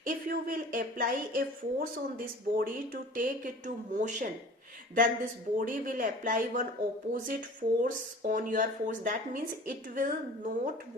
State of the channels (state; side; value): normal; both; correlation 0.43